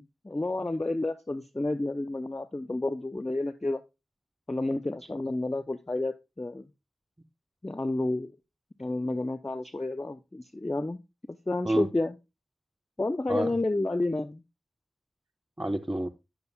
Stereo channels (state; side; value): normal; both; correlation 0.96